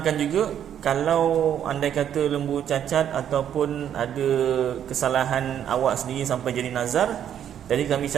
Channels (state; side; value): quieter; left; 9.7 dB